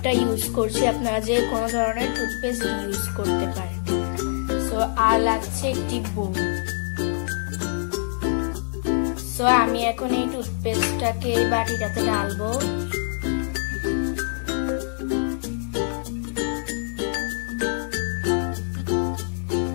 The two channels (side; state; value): right; silent; digital silence